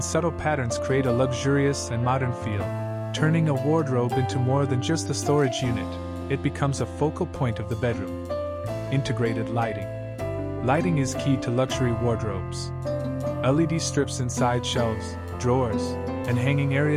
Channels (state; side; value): identical; both; correlation 1.00